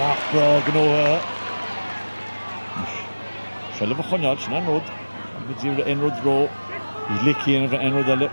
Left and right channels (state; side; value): inverted; both; correlation -1.00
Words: Bra gno Trelliv a chonjal sin an rod with zero enrod ro he's licky in the enrod ele